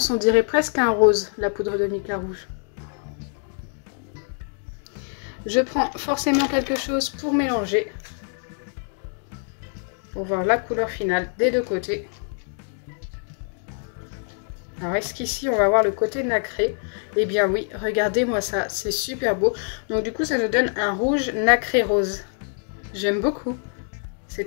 on dirait presque un rose, la poudre de mica rouge. Je prends forcément quelque chose pour mélanger. Pour voir la couleur finale des deux côtés. Alors est-ce qu'ici on va voir le côté nacré? Eh bien oui, regardez-moi ça, c'est super beau. Donc du coup ça nous donne un rouge nacré rose. J'aime beaucoup, c'est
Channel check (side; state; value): right; silent; 58 dB below the other